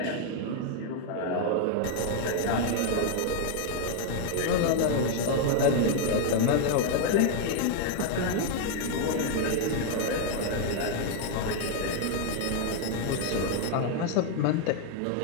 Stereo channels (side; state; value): both; different; correlation 0.00